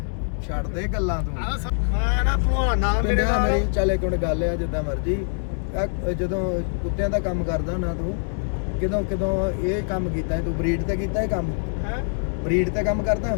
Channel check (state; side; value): silent; right; 63 dB below the other